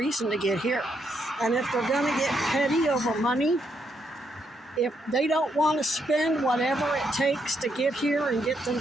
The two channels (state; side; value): normal; both; correlation 0.77